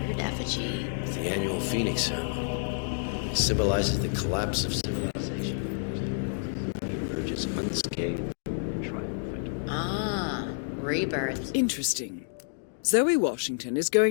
effigy? It's the annual Phoenix ceremony. It symbolizes the collapse of civilization from which the Ark Society emerges unscathed. Ah, rebirth. Interesting. Zoe Washington is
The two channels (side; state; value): right; silent; digital silence